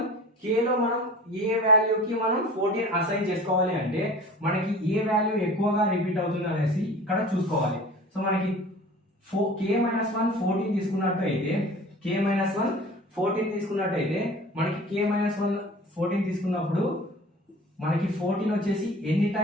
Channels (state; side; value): normal; both; correlation 0.42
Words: k లో మనం ఏ వాల్యూకి మనం 14 అసైన్ చేసుకోవాలి అంటే మనకి ఏ వాల్యూ ఎక్కువగా రిపీట్ అవుతుంది అనేసి ఇక్కడ చూసుకోవాలి. సో మనకి k-1 14 తీసుకున్నట్టయితే మనకి k-1 14 తీసుకున్నప్పుడు మనకి 14 వచ్చేసి ఎన్ని